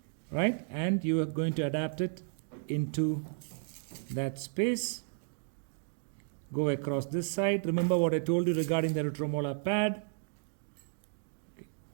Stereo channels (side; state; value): left; silent; digital silence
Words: right? And you are going to adapt it into that space. Go across this side. Remember what I told you regarding the retromolar pad. Okay.